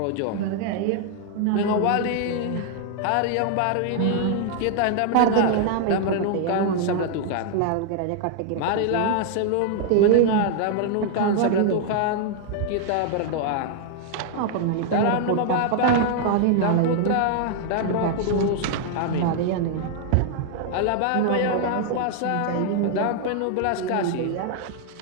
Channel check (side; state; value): both; different; correlation 0.00